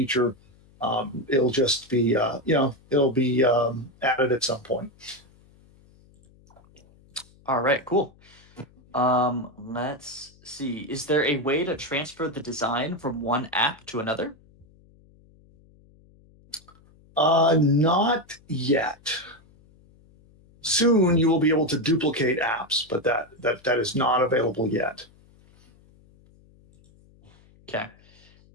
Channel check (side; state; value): left; noise; hum, 28 dB below the sound